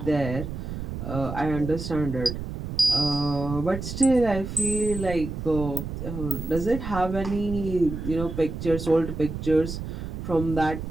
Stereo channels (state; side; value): noise; right; rumble, 6 dB below the sound